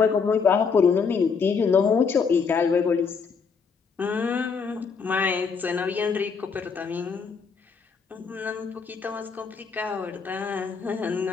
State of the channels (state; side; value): quieter; right; 5.5 dB